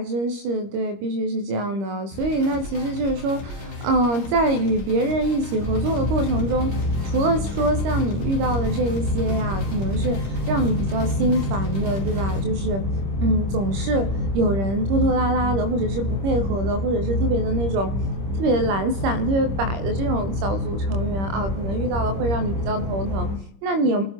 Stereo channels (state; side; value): late; left; 26 ms